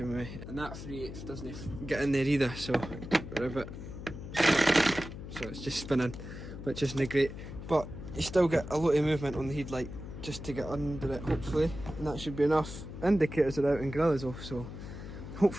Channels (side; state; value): left; noise; hum, 10 dB below the sound